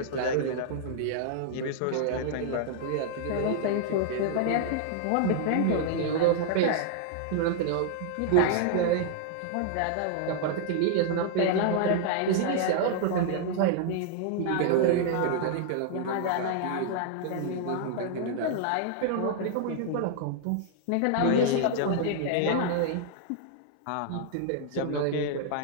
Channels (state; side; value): different; both; correlation -0.01